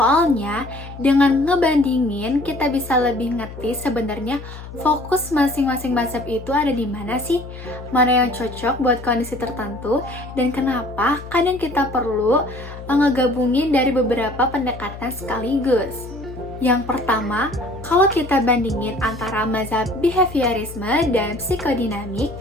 dengan ngebandingin, kita bisa lebih ngerti sebenarnya fokus masing-masing mazhab itu ada di mana sih? Mana yang cocok buat kondisi tertentu, dan kenapa kadang kita perlu ngegabungin dari beberapa pendekatan sekaligus. Yang pertama, kalau kita bandingin antara mazhab behaviorisme dan psikodinamik,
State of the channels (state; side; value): noise; left; hum, 13 dB below the sound